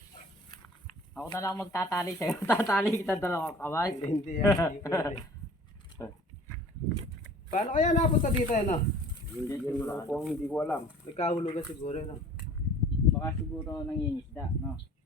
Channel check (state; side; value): normal; both; correlation 0.48